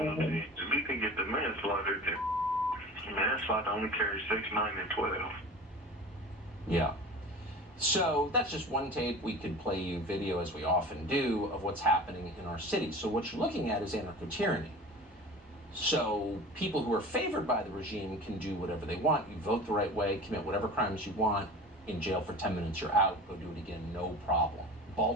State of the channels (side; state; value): both; normal; correlation 0.37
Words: If we can get the manslaughter, then manslaughter only carries 6, 9, and 12. Yeah. So that's just one tape. We could play you video, as we often do, of what's happening in our cities. So what you're looking at is anarcho-tyranny. So people who are favored by the regime can do whatever they want. You vote the right way, commit whatever crimes you want, in jail for 10 minutes, you're out, go do it again, no problem.